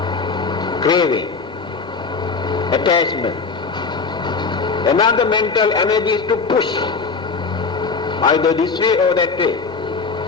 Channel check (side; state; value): right; quieter; 4.7 dB